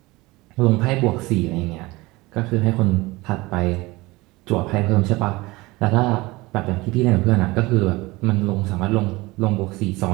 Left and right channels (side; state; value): left; quieter; 21.7 dB